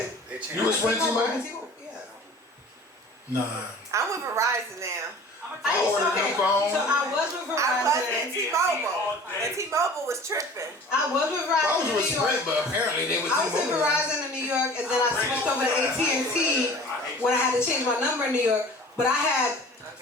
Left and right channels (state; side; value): normal; both; correlation 0.44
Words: They changing. You was Sprint T-Mobile? Yeah. Nah. I'm with Verizon now. I ordered new phone. So I was with Verizon. I was at T-Mobile. And T-Mobile was tripping. I was with Verizon. I was in with New York. Sprint, but apparently they was I was with T-Mobile. Verizon in New York, and then I switched over to AT&T when I had to change my number in New York. But I had